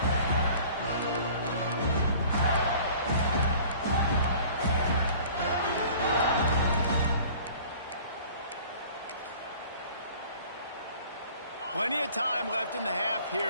Plenty of time left in the half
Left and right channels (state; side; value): inverted; both; correlation -0.48